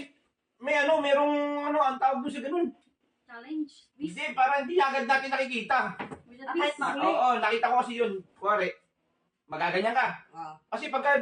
ang tawag doon sa ganun. Challenge. Hindi, para hindi agad natin nakikita. With a Kahit twist. mahuli. Oo, nakita ko kasi yun. Kuwari, magaganyan ka. Ah. Kasi pagka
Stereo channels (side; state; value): both; identical; correlation 1.00